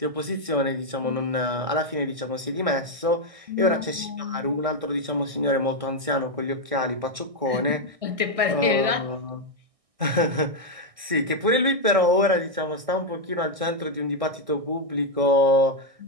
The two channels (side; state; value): left; late; 1.6 ms